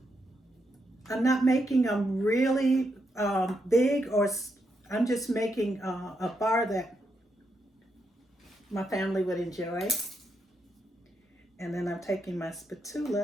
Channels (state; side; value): normal; both; correlation 0.81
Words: I'm not making them really big, or I'm just making a bar that my family would enjoy. And then I'm taking my